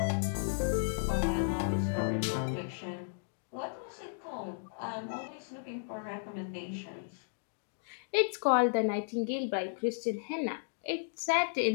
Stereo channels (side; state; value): right; silent; digital silence